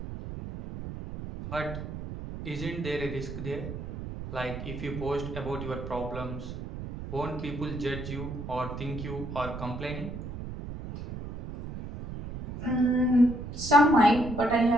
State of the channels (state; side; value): noise; right; rumble, 8 dB below the sound